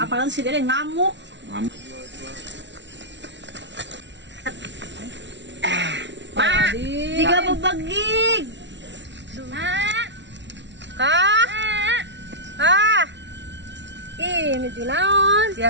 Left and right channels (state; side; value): late; left; 0.52 ms